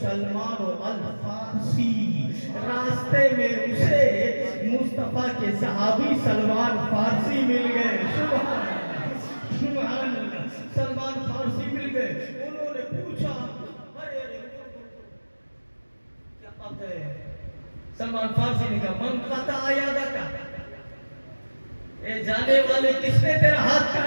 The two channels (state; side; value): inverted; both; correlation -1.00